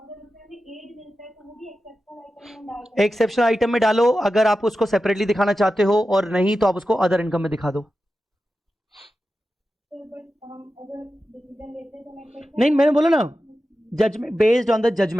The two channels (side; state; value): both; normal; correlation 0.92